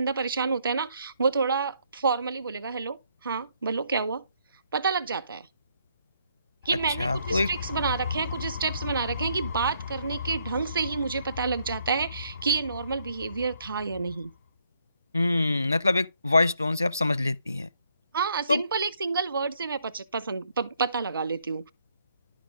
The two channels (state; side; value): inverted; both; correlation -0.71